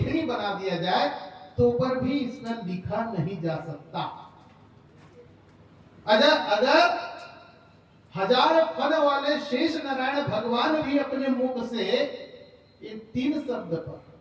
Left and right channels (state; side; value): identical; both; correlation 1.00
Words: बना दिया जाए तो पर भी इसमें लिखा नहीं जा सकता। अगर हजार फन वाले शेष नारायण भगवान भी अपने मुख से इन तीन शब्द पर